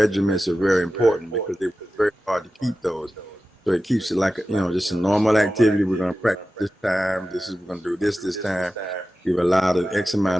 are very important because they're very hard to keep those. So it keeps it like just a normal activity. We're going to practice this time. We're going to do this time. We've allowed an X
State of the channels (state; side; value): normal; both; correlation 0.94